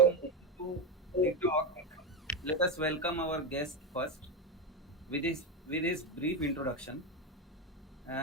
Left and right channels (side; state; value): both; normal; correlation 0.13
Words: moving to the talk, let us welcome our guest first with his brief introduction.